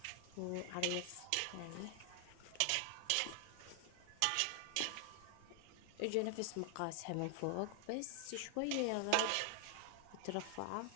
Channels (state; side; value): different; both; correlation 0.00